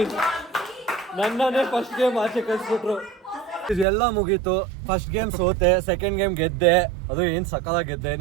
ನನ್ನನ್ನೇ first game ಆಚೆ ಕಳಿಸ್ಬಿಟ್ರು. ಇದೆಲ್ಲ ಮುಗೀತು. First game ಸೋತೆ, second game ಗೆದ್ದೆ. ಅದು ಏನ್ ಸಕಾಲಾಗಿ ಗೆದ್ದೆ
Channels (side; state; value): left; drops out; at 3.9 s